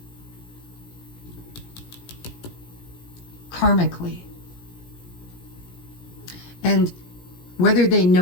karmically. And whether they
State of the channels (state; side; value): late; right; 17 ms